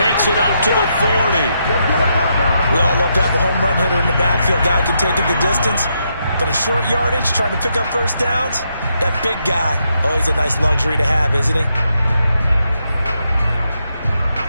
it up to the 40. We all love to have a home run hitter in the backfield. Guy who can take it the distance. But in short yardage, trying to pick up first downs, that big guy, always a nice luxury to have, isn't he?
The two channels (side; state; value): both; inverted; correlation -0.80